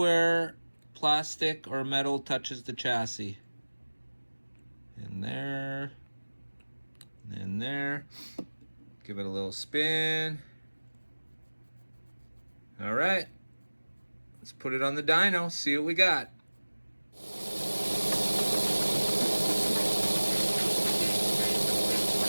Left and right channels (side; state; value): both; inverted; correlation -1.00